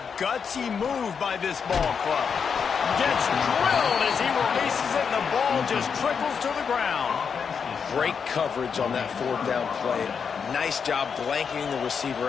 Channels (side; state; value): right; quieter; 6.4 dB